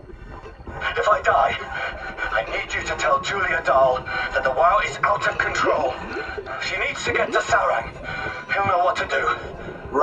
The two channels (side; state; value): both; identical; correlation 1.00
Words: If I die, I need you to tell Julia Dahl that the WoW is out of control. She needs to get to Sarang. He'll know what to do.